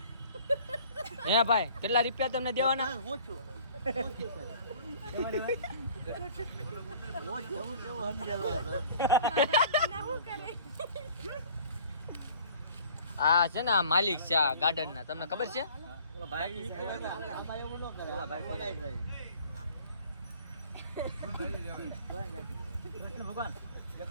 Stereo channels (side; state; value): both; inverted; correlation -0.51